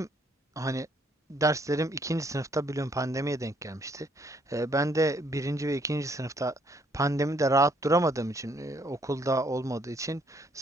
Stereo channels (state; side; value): normal; both; correlation 0.67